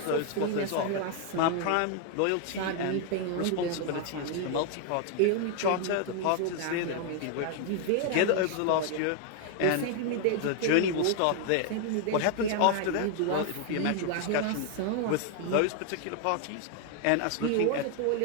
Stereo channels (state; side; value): different; both; correlation 0.00